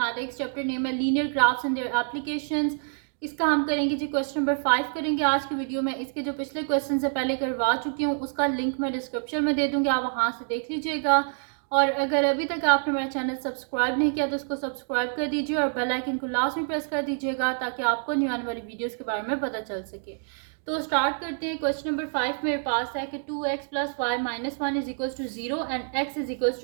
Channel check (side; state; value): left; silent; 60 dB below the other